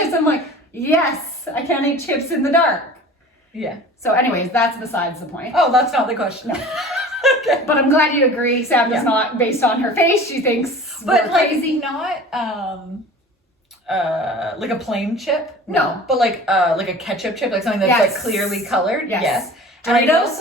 I'm like, yes, I can't eat chips in the dark. Yeah. So anyways, that's besides the point. Oh, that's not the question. No. Okay. But I'm glad you agree. Sam does not, based on her face, she thinks But we're like, crazy. not, like a plain chip? No. But like a ketchup chip, like something that's Yes. like clearly colored? Yes. And I would Doritos?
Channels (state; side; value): normal; both; correlation 0.41